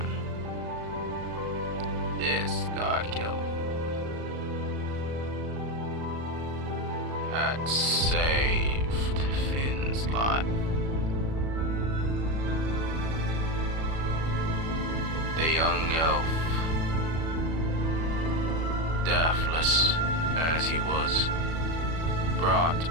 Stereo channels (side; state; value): left; late; 37 ms